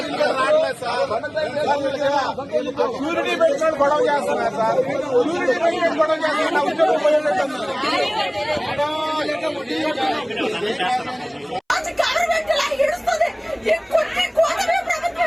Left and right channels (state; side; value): identical; both; correlation 1.00